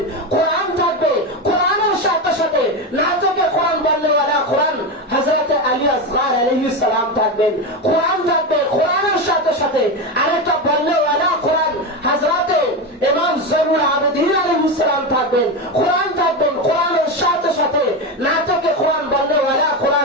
কোরআন থাকবে, কোরআনের সাথে সাথে নাতকে কোরআন বললেওয়ালা কোরআন হযরতে আলী আসগার আলাইহিস সালাম থাকবেন। কোরআন থাকবে, কোরআনের সাথে সাথে আরেকটা বললেওয়ালা কোরআন হযরতে ইমাম জয়নুল আবেদিন আলাইহিস সালাম থাকবেন। কোরআন থাকবেন, কোরআনের সাথে সাথে নাতকে কোরআন বললেওয়ালা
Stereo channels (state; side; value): normal; both; correlation 0.16